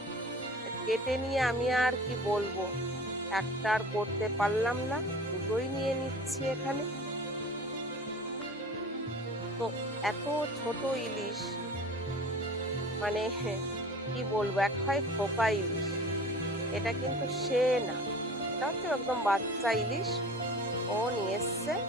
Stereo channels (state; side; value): normal; both; correlation 0.40